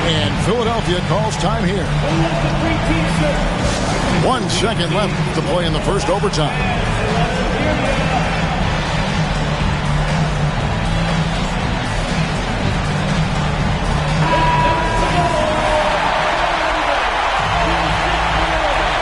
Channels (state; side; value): identical; both; correlation 1.00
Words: And Philadelphia calls time here. 1 second left to play in the first overtime.